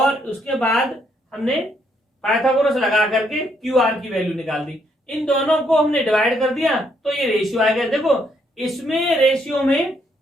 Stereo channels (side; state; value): both; normal; correlation 0.72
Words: उसके बाद हमने पाइथागोरस लगा करके QR की वैल्यू निकाल दी। इन दोनों को हमने डिवाइड कर दिया तो ये रेशियो आ गया। देखो इसमें रेशियो में